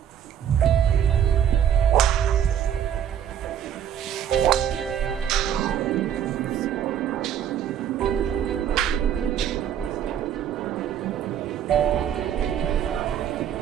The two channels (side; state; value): left; quieter; 9.4 dB